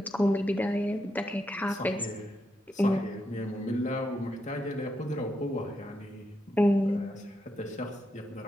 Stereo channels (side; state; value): both; normal; correlation 0.83